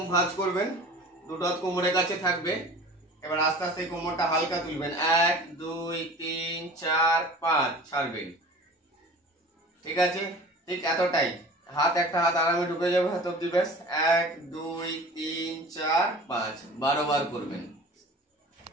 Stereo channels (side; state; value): both; normal; correlation 0.41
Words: ভাঁজ করবেন, দুটো হাত কোমরের কাছে থাকবে। এবার আস্তে আস্তে কোমরটা হালকা তুলবেন, 1 2 3 4 5, ছাড়বেন, ঠিক আছে? ঠিক এতটাই, হাত একটা হাত আরামে ঢুকে যাবে হাত অব্দি, ব্যাস। 1 2 3 4 5, 12 বার করবেন।